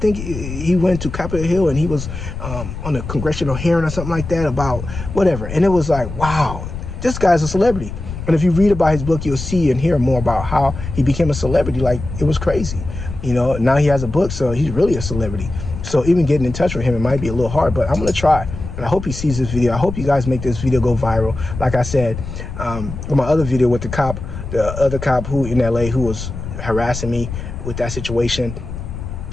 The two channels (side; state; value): left; noise; rumble, 8 dB below the sound